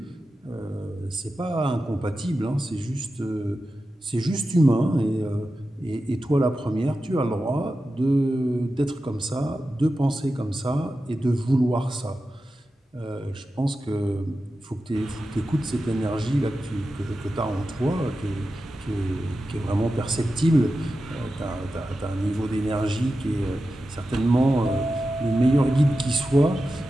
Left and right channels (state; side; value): normal; both; correlation 0.92